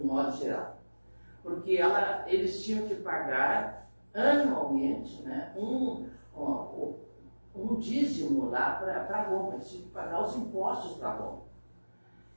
modo geral, porque eles tinham que pagar anualmente, né, um dízimo lá para Roma, eles tinham que pagar os impostos para Roma.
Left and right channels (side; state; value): both; inverted; correlation -1.00